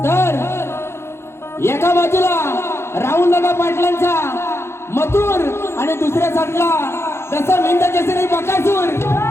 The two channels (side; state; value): right; late; 0.12 ms